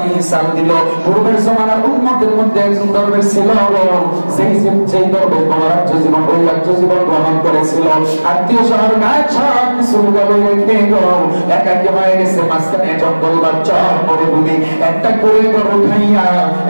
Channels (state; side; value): inverted; both; correlation -1.00